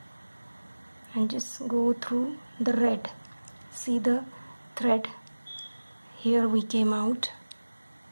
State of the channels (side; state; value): both; inverted; correlation -1.00